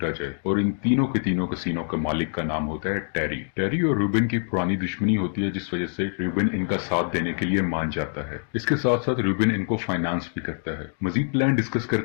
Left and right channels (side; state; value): right; silent; digital silence